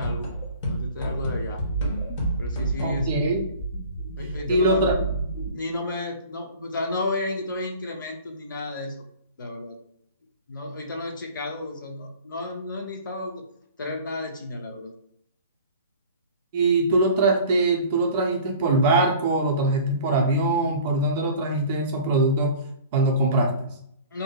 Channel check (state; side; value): inverted; both; correlation -0.42